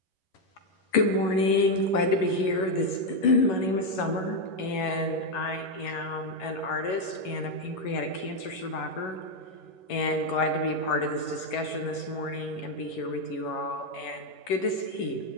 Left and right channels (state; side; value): late; right; 11 ms